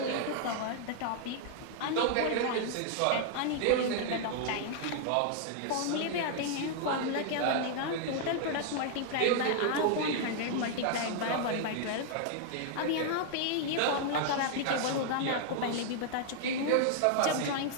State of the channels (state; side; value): different; both; correlation 0.00